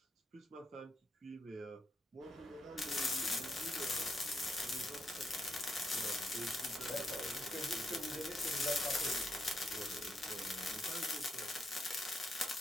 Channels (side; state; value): both; normal; correlation 0.80